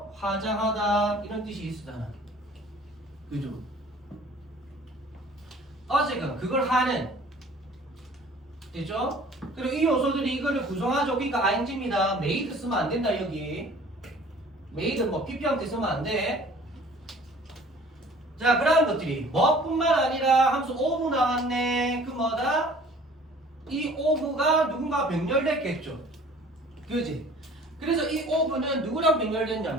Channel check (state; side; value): normal; both; correlation 0.50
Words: 화장하다 이런 뜻이 있으잖아. 그죠? 어쨌든 그걸 하는 됐죠? 그리고 이 요소들이 이거를 구성하죠. 그러니까 ing입니다. made 쓰면 안 된다 여기. made 뭐 pp형태 쓰면 안 돼. 자, 그러한 것들이 뭐뿐만 아니라 함수 of 나왔네. 그 뭐다? 이 of가 누군가 병렬됐겠죠. 그지? 그래서 이 of는 누구랑